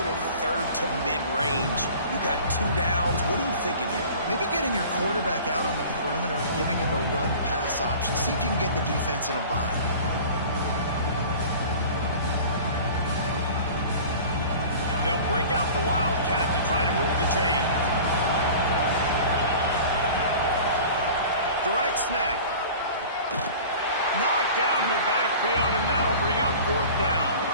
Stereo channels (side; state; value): both; inverted; correlation -0.41